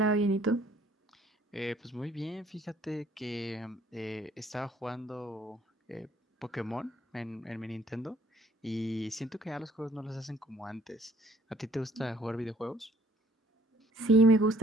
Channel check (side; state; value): both; normal; correlation 0.59